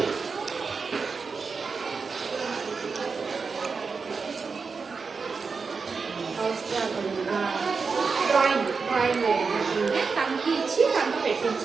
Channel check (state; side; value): quieter; left; 4.9 dB